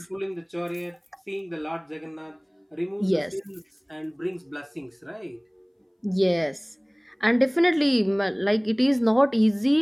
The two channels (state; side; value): identical; both; correlation 1.00